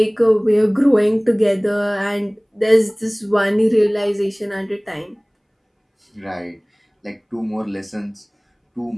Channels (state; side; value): identical; both; correlation 1.00